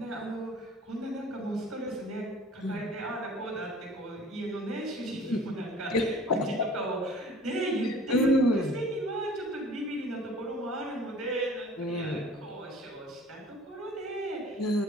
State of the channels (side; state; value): both; normal; correlation 0.47